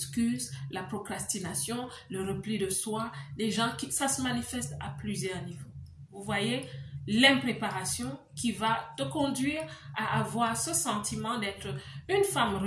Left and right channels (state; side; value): identical; both; correlation 1.00